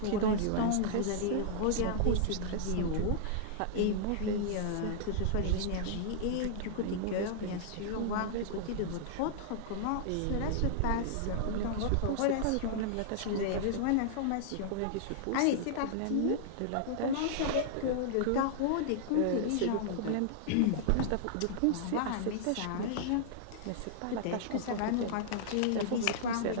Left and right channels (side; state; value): both; different; correlation -0.01